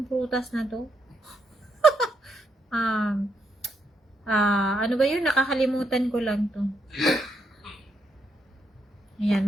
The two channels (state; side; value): normal; both; correlation 0.79